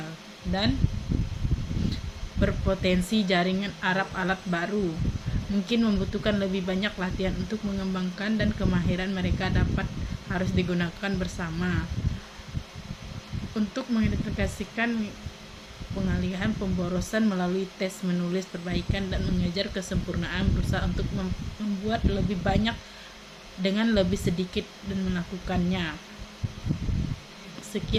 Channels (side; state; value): both; identical; correlation 1.00